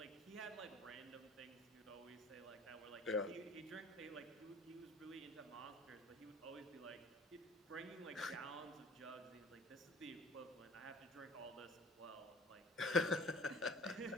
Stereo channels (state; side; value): normal; both; correlation 0.45